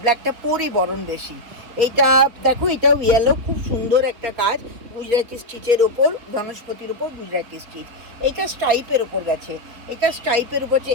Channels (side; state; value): left; late; 4.4 ms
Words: ব্ল্যাকটা পরি বরং বেশি। এইটা দেখো, এটাও ইয়েলো, খুব সুন্দর একটা কাজ গুজরাটি স্টিচের ওপর, বনস্পতির ওপর গুজরাটি স্টিচ। এটা স্টাইপের ওপর গেছে,